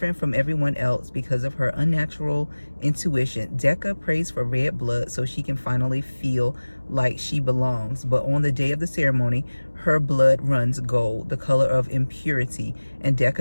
from everyone else because of her unnatural intuition, Decca prays for red blood so she can finally feel like she belongs. But on the day of the ceremony, her blood runs gold, the color of impurity, and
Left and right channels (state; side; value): inverted; both; correlation -1.00